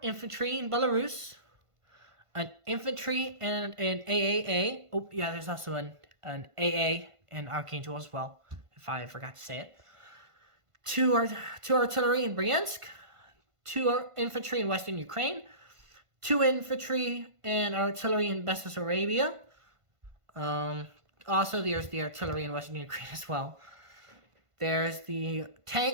infantry in Belarus, an infantry and an AAA. Oh, yeah, there's also an AA in Archangel as well, if I forgot to say it. 2 artillery in Bryansk, 2 infantry in Western Ukraine, 2 infantry and artillery in Bessarabia. Also, there's the artillery in Western Ukraine as well. There's the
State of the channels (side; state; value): left; late; 1.5 ms